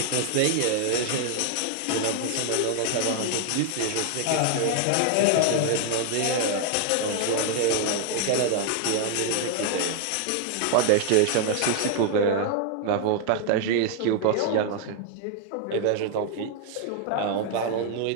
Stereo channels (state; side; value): different; both; correlation 0.00